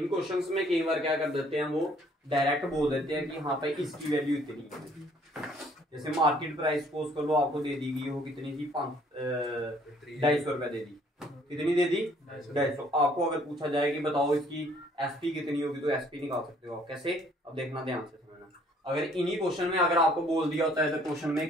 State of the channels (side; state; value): both; normal; correlation 0.61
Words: क्वेश्चंस में कई बार क्या कर देते हैं, वो डायरेक्ट बोल देते हैं कि हाँ भाई इसकी वैल्यू इतनी है। जैसे मार्केट प्राइस सपोज कर लो आपको दे दी गई हो, कितनी थी? 250 रुपया दे दी। कितनी दे दी? 250। आपको अगर पूछा जाए कि बताओ इसकी एसपी कितनी होगी, तो एसपी निकाल सकते हो आप। कैसे? अब देखना ध्यान से समझना। अगर इन्हीं क्वेश्चन में अगर आपको बोल दिया होता है इधर क्वेश्चन में